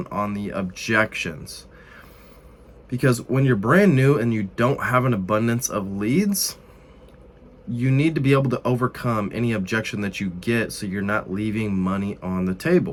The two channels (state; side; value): identical; both; correlation 1.00